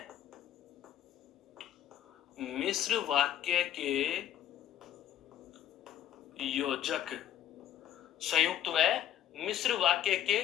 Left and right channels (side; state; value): right; quieter; 11.2 dB